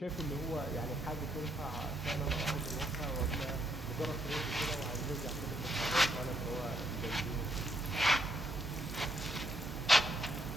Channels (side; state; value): both; normal; correlation 0.74